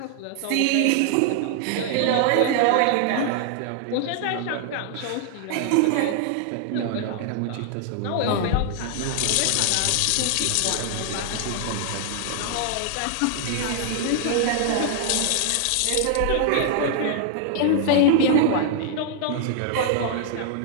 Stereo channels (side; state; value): both; different; correlation 0.00